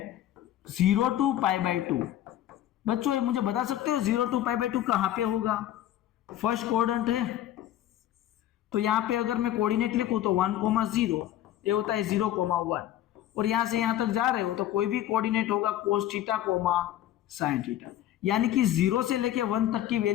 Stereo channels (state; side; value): quieter; right; 12.6 dB